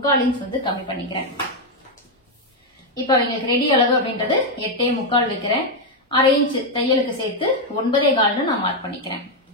இன்ச் வந்து கம்மி பண்ணிக்கிறேன். இப்ப அவங்களுக்கு ரெடி அளவு அப்படின்றது 8.25 வைக்கிறேன். 1/2 இன்ச் தையலுக்கு சேர்த்து 9.25 நான் மார்க் பண்ணிக்கிறேன்.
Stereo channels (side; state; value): both; normal; correlation 0.03